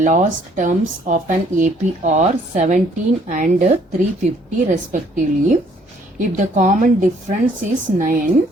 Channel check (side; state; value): both; normal; correlation 0.63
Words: terms of an AP are 17 and 350 respectively. If the common difference is 9,